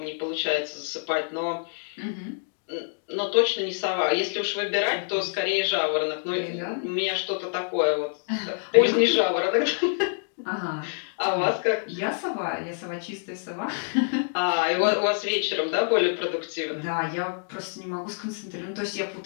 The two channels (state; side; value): silent; right; digital silence